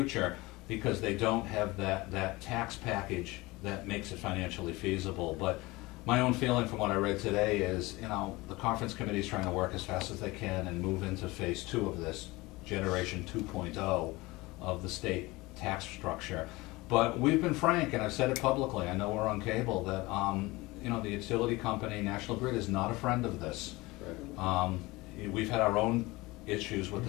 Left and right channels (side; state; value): right; quieter; 21.7 dB